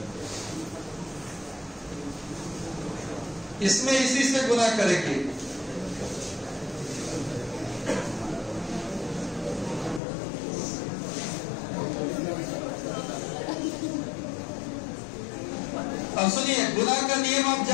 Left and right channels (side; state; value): right; drops out; at 10.0 s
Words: इसमें इसी से गुना करेंगे। अब सुनिए, गुना का नियम आप